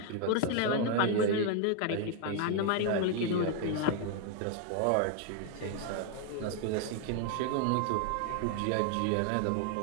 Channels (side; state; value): both; different; correlation 0.00